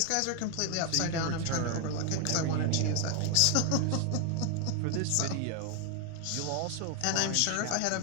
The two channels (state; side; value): different; both; correlation 0.00